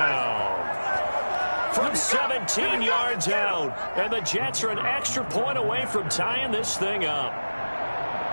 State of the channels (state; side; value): inverted; both; correlation -1.00